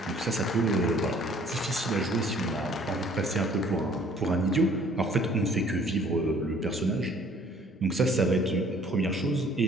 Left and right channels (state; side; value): normal; both; correlation 0.57